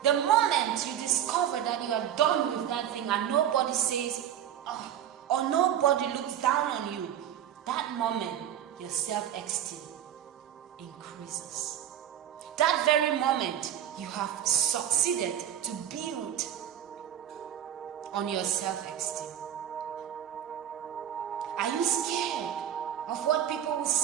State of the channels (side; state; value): left; quieter; 10.2 dB